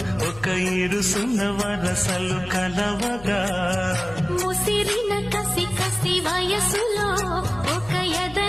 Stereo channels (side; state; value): left; noise; hum, 19 dB below the sound